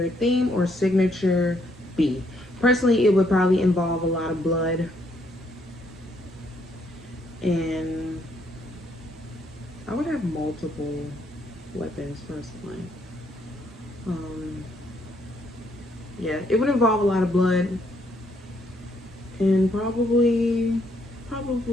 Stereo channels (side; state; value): both; normal; correlation 0.71